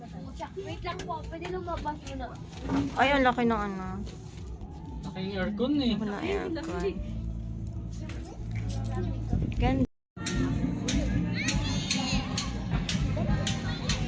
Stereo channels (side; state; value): both; identical; correlation 1.00